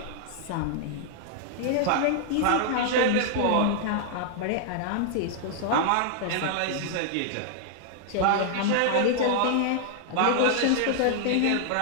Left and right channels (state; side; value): different; both; correlation -0.01